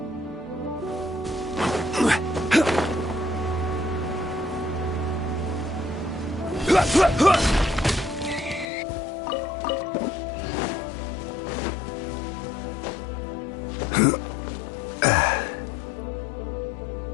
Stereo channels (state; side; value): drops out; right; at 8.7 s